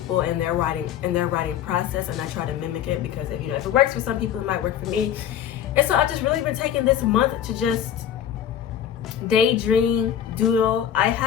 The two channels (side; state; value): right; quieter; 9.8 dB